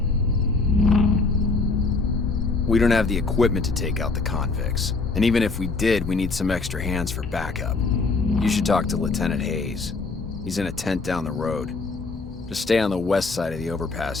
We don't have the equipment to take out the convicts. And even if we did, we need some extra hands for backup. You should talk to Lieutenant Hayes. He's in a tent down the road. Just stay on the west side of the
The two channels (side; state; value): right; quieter; 3.9 dB